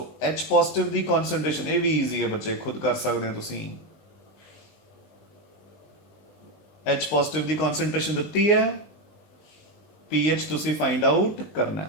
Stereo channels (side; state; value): right; late; 19 ms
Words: H positive ਦੀ ਕਨਸੈਂਟ੍ਰੇਸ਼ਨ, ਇਹ ਵੀ ਈਜ਼ੀ ਹੈ ਬੱਚੇ ਖੁਦ ਕਰ ਸਕਦੇ ਹੋ ਤੁਸੀਂ। H ਪੋਜ਼ਿਟਿਵ ਦੀ ਕਨਸੈਂਟ੍ਰੇਸ਼ਨ ਦਿੱਤੀ ਹੈ, पीएच तुसी फाइंड आउट करना